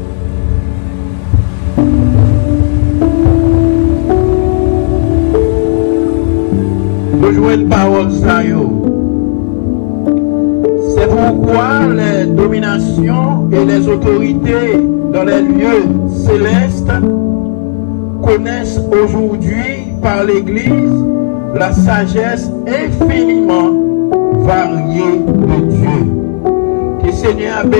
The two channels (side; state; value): right; silent; digital silence